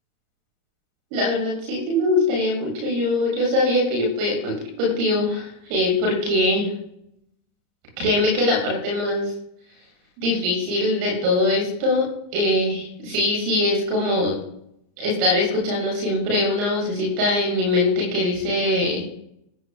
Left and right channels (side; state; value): left; late; 34 ms